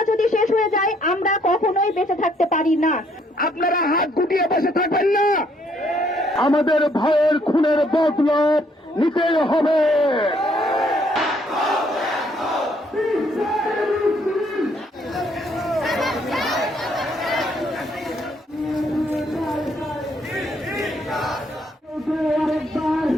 যদি শেষ হয়ে যায় আমরা কখনোই বেঁচে থাকতে পারি না। আপনারা হাত গুটিয়ে বসে থাকবেন না। আমাদের ভাইয়ের খুনের বদলা নিতেই হবে।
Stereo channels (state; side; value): normal; both; correlation 0.68